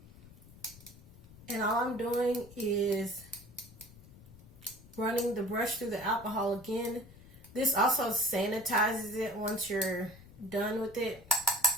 And all I'm doing is running the brush through the alcohol again. This also sanitizes it once you're done with it.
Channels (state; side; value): noise; left; rumble, 20 dB below the sound